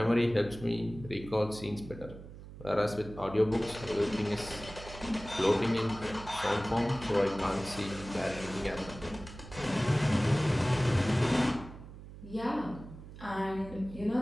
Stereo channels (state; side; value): noise; right; hum, 15 dB below the sound